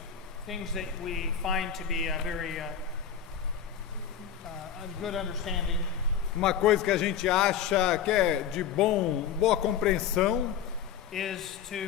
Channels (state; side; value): quieter; right; 8.4 dB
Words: things that we find to be a very a good understanding uma coisa que a gente acha que é de boa compreensão is